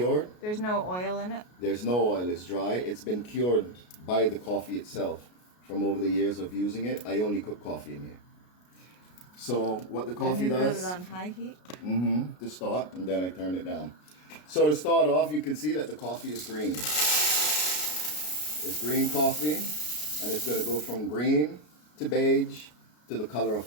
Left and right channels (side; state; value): right; late; 33 ms